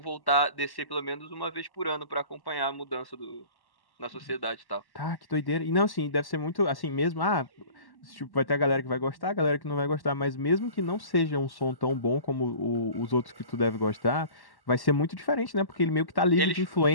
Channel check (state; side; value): late; right; 1.1 ms